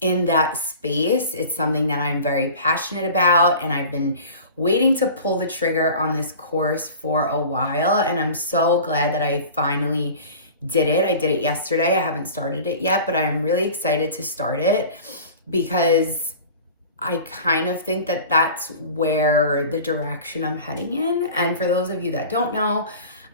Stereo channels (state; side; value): inverted; both; correlation -0.40